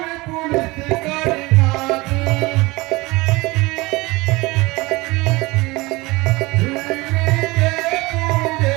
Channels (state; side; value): quieter; left; 22.5 dB